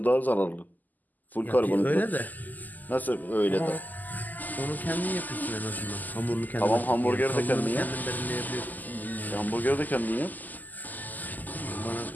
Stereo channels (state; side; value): late; right; 0.083 ms